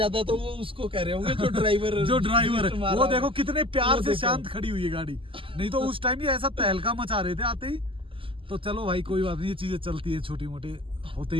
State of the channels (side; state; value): left; late; 0.25 ms